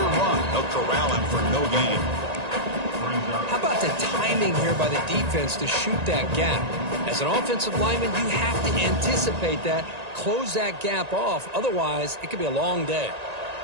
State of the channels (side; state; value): left; late; 1.9 ms